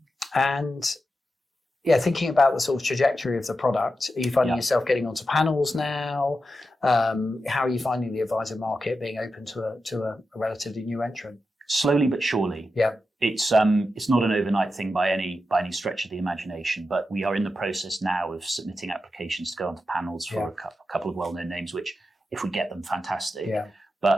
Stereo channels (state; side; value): normal; both; correlation 0.89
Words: And yeah, thinking about the sort of trajectory of the product, are you finding yourself getting onto panels now? How are you finding the advisor market being open to a relatively new entrant? Slowly but surely. Yeah. It's not an overnight thing by any stretch of the imagination, but we are in the process now of submitting applications to go onto panels for a couple of well-known names, which if we get them, fantastic. Yeah.